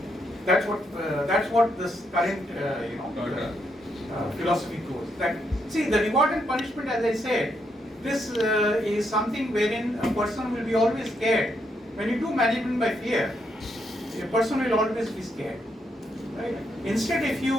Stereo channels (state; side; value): normal; both; correlation 0.78